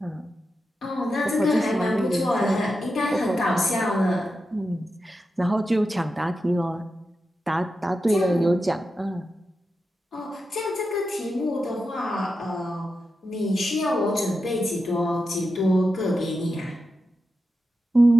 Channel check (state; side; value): normal; both; correlation 0.89